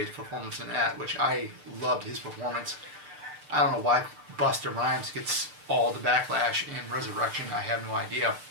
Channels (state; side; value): late; left; 6.7 ms